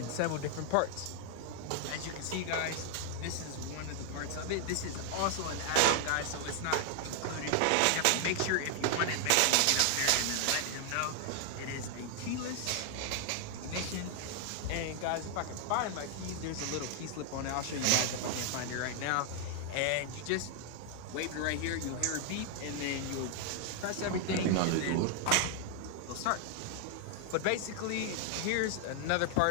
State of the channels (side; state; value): both; different; correlation 0.00